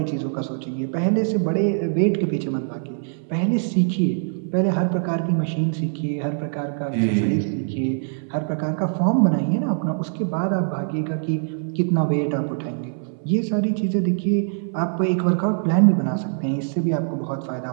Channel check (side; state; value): left; silent; 62 dB below the other